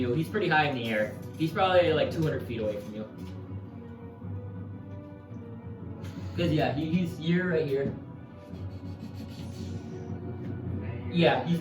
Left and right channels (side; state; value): both; identical; correlation 1.00